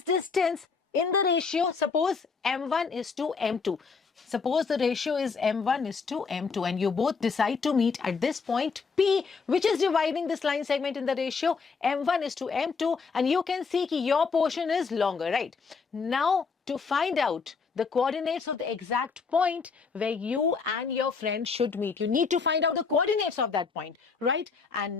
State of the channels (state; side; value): quieter; right; 5.1 dB